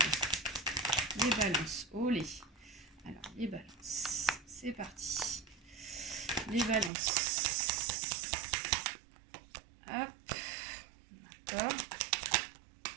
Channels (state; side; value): drops out; left; at 6.9 s